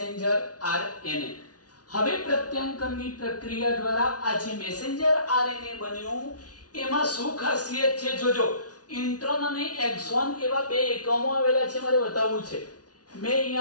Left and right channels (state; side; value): late; right; 0.68 ms